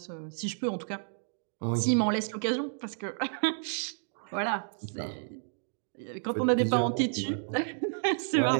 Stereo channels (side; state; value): left; silent; digital silence